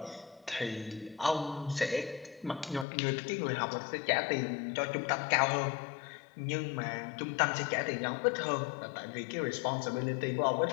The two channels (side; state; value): right; drops out; at 2.9 s